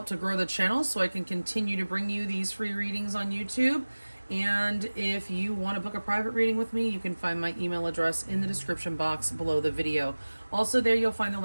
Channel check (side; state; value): both; inverted; correlation -1.00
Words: to grow the channel so I can continue to bring you these free readings on YouTube. And if you want to book a private reading with me, you can find my email address in the description box below the video. Also there you'll find the